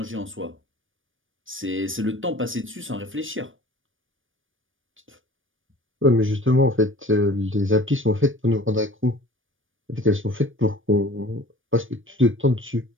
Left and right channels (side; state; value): left; late; 0.58 ms